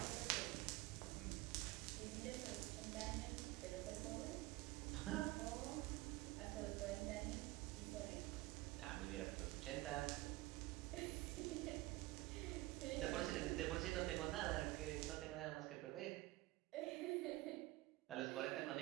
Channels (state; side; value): quieter; left; 19.3 dB